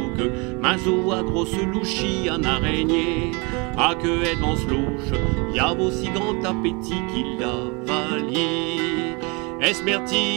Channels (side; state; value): left; quieter; 29.7 dB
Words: mazou à grosse louchie, en araignée, à que et devant louche, y a aussi grand appétit qu'il avalie.